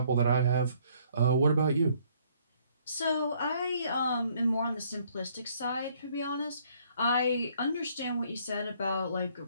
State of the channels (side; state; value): both; inverted; correlation -0.64